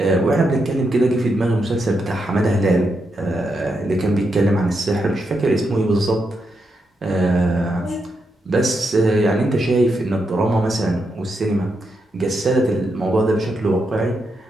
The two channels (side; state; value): both; normal; correlation 0.83